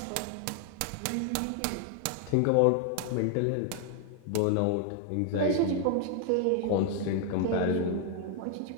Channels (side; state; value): both; different; correlation 0.00